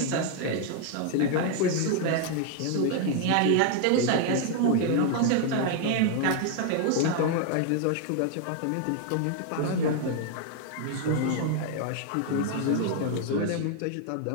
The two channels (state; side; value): different; both; correlation 0.00